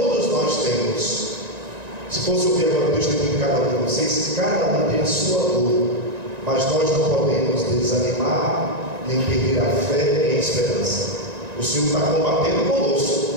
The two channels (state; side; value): late; left; 1.9 ms